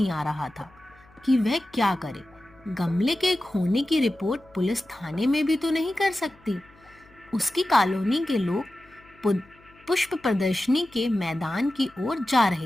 आ रहा था कि वह क्या करे। गमले के खोने की रिपोर्ट पुलिस थाने में भी तो नहीं कर सकती। उसकी कॉलोनी के लोग पुष्प प्रदर्शनी के मैदान की ओर जा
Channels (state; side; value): noise; left; hum, 28 dB below the sound